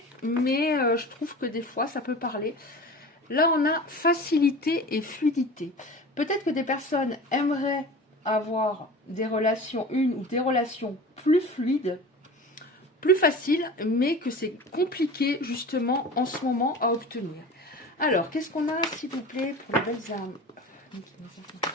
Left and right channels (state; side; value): normal; both; correlation 0.36